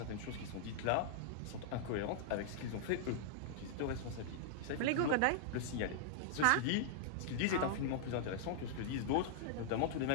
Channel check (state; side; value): different; both; correlation -0.01